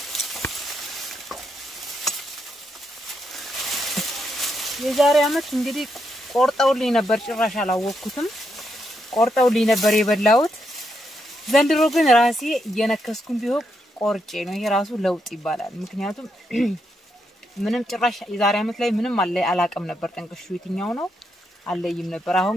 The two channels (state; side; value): normal; both; correlation 0.80